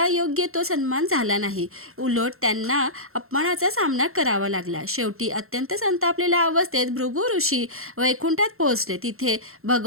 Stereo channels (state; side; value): late; left; 0.62 ms